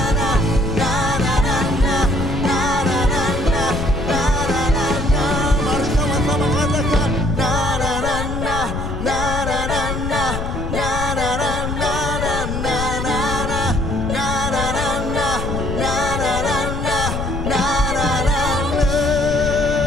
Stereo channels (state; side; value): noise; left; rumble, 4 dB below the sound